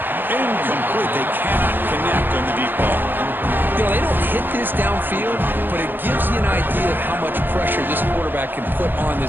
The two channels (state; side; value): late; left; 0.094 ms